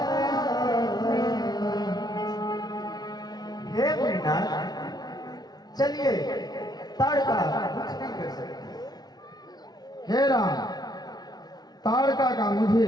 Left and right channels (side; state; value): right; late; 0.19 ms